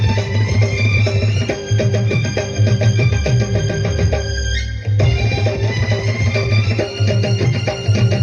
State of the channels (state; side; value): identical; both; correlation 1.00